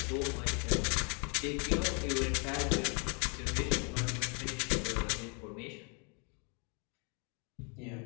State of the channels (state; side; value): quieter; right; 36.1 dB